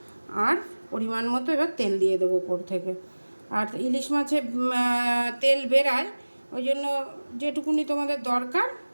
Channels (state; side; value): inverted; both; correlation -1.00